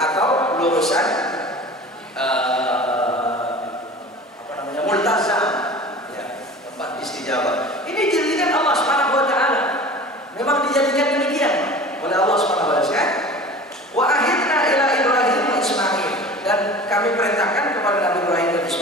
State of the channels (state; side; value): normal; both; correlation 0.39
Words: lurusan multazam, ya, tempat istijabah. Ini dijadikan Allah Subhanahu wa taala. Memang dijadikan demikian oleh Allah Subhanahu wa taala. Wa ahidna ila Ibrahim wa Ismail, dan kami perintahkan kepada Nabi Ibrahim dan